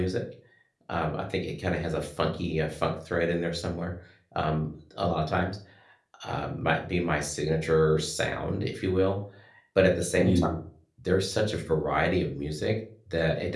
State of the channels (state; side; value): identical; both; correlation 1.00